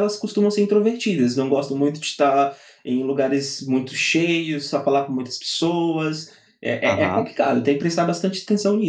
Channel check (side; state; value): both; identical; correlation 1.00